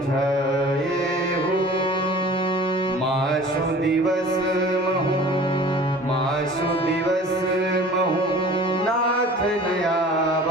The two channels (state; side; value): normal; both; correlation 0.44